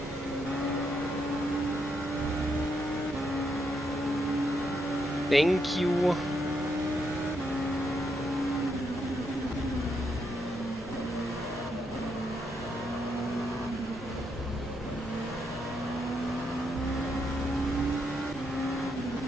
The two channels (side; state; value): both; normal; correlation 0.79